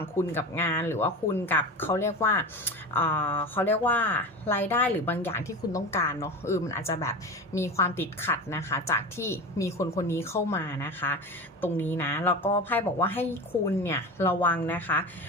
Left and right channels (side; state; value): both; normal; correlation 0.28